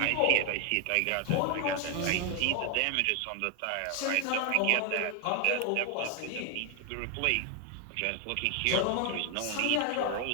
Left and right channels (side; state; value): both; different; correlation 0.01